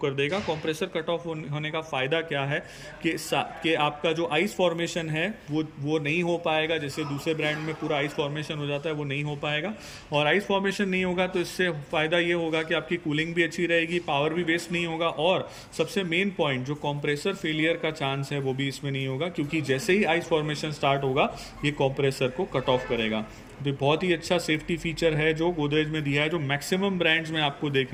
कर देगा। कंप्रेसर कट ऑफ होने का फ़ायदा क्या है कि आपका जो आइस फॉर्मेशन है वो नहीं हो पाएगा। जैसे दूसरे ब्रांड में पूरा आइस फॉर्मेशन हो जाता है, वो नहीं हो पाएगा। और आइस फॉर्मेशन नहीं होगा तो इससे फ़ायदा ये होगा कि आपकी कूलिंग भी अच्छी रहेगी, पावर भी वेस्ट नहीं होगा, और सबसे मेन पॉइंट जो कंप्रेसर फेलियर का चांस है वो भी इसमें नहीं होगा, क्योंकि जैसे ही आइस फॉर्मेशन स्टार्ट होगा ये कंप्रेसर को कट ऑफ करेगा। तो बहुत ही अच्छा सेफ्टी फीचर है जो गोदरेज में दिया है, जो मैक्सिमम ब्रांड्स में आपको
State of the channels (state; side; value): identical; both; correlation 1.00